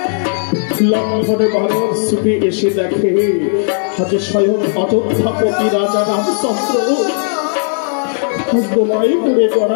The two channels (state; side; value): silent; right; digital silence